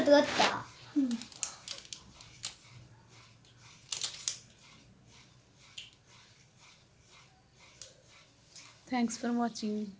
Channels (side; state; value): both; identical; correlation 1.00